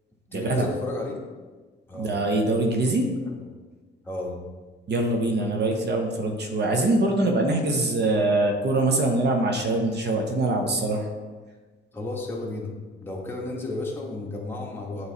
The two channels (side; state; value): both; normal; correlation 0.43